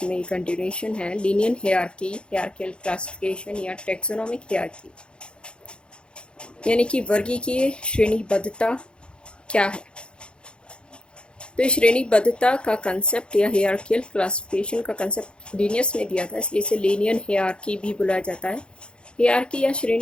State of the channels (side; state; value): right; late; 0.054 ms